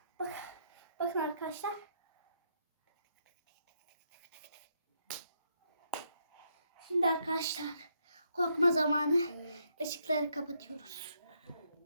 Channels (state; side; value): inverted; both; correlation -0.76